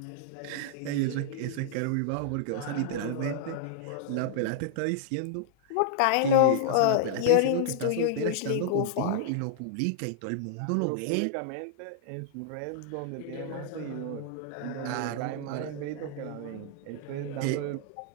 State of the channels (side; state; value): both; different; correlation -0.01